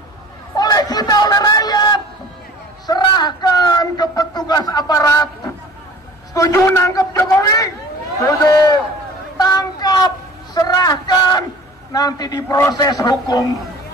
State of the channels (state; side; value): normal; both; correlation 0.45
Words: Oleh kita, oleh rakyat. Serahkan ke petugas aparat. Setuju nangkep Jokowi? Setuju. Tangkap, serahkan, nanti diproses hukum.